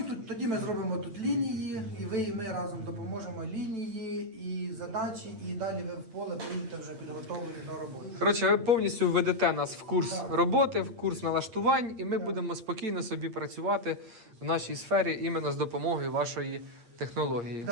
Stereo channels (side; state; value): left; late; 8.6 ms